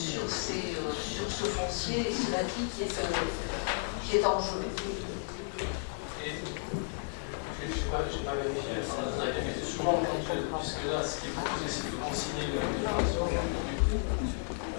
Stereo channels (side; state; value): right; silent; digital silence